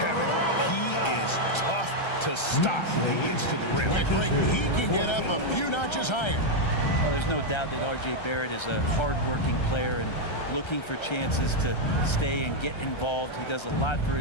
he is tough to stop when he gets to the rim. Yeah, Greg, he can get up a few notches higher. Well, there's no doubt that R.J. Barrett is a hard-working player and looking for chances to stay and get involved. He does a lot for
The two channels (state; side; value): late; right; 1.3 ms